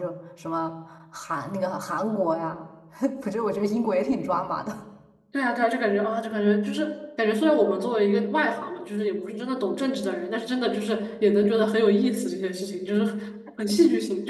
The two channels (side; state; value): both; identical; correlation 1.00